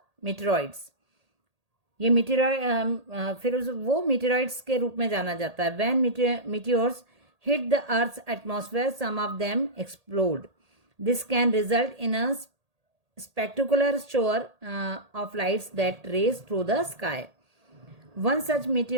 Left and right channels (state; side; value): late; left; 1.8 ms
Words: meteoroids. ये मीटेरॉइड फिर वो मीटेरॉइड्स के रूप में जाना जाता है. When meteors hit the earth's atmosphere some of them explode. This can result in a spectacular shower of lights that race through the sky. One such